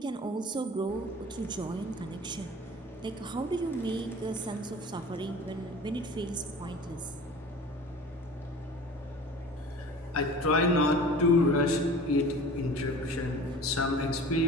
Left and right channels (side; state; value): both; normal; correlation 0.41